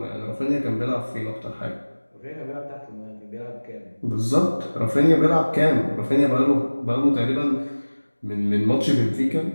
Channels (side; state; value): both; inverted; correlation -1.00